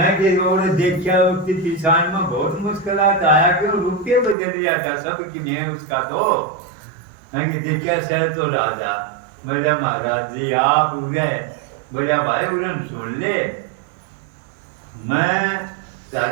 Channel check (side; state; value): left; drops out; at 4.4 s